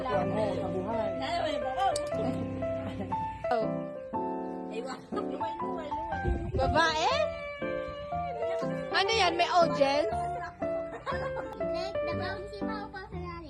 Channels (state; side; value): identical; both; correlation 1.00